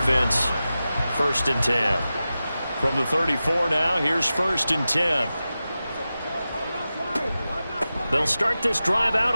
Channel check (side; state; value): both; inverted; correlation -0.94